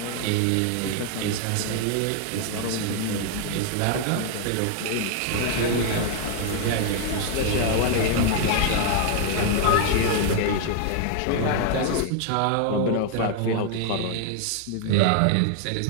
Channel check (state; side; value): different; both; correlation 0.00